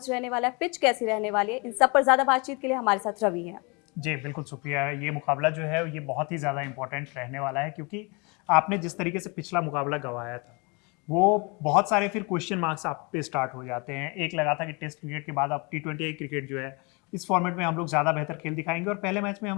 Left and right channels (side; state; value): right; quieter; 29.8 dB